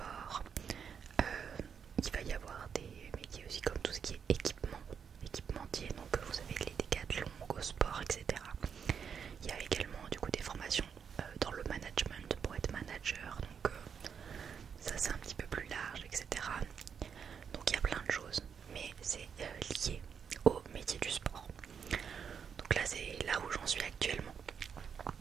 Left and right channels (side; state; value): left; quieter; 7.0 dB